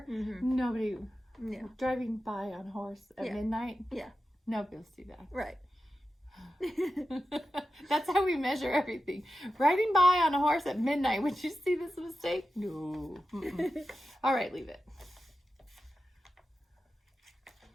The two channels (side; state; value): both; normal; correlation 0.92